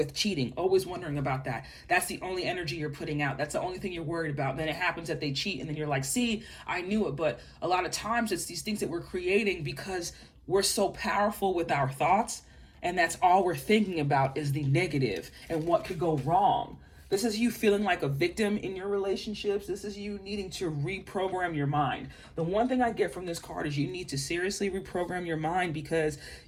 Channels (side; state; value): both; identical; correlation 1.00